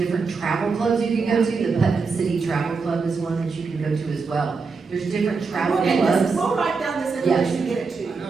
travel clubs you can go to. The Putnam City Travel Club is one that you can go to as well. There's different travel We'll get this- clubs. We'll write down this information and get it to I you.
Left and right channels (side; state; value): left; quieter; 4.7 dB